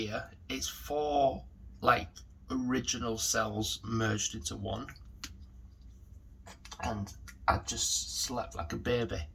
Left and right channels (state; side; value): identical; both; correlation 1.00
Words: it's 4 like original cells merged into one, and I just slept like a baby